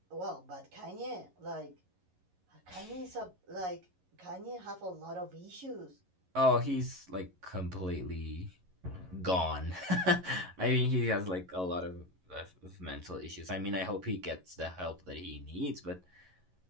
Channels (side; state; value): left; late; 11 ms